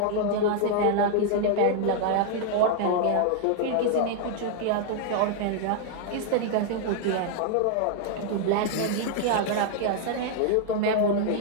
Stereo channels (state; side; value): different; both; correlation -0.01